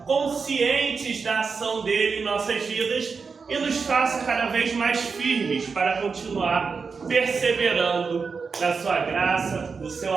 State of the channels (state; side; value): quieter; left; 5.1 dB